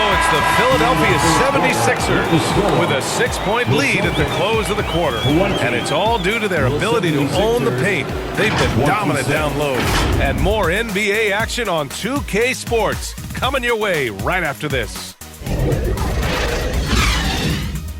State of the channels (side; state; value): both; identical; correlation 1.00